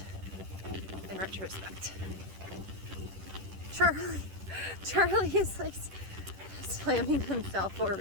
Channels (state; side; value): late; left; 10 ms